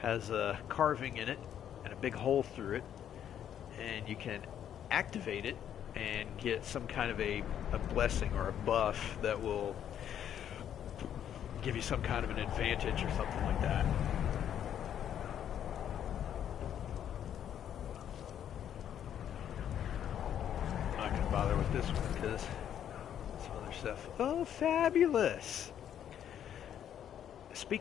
a carving in it, and a big hole through it, and you can activate it and get some kind of a blessing or a buff that will give you some kind of an advantage or something like that. I'm not going to bother with this one because some other stuff. Oh, fabulous!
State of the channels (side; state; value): right; quieter; 9.8 dB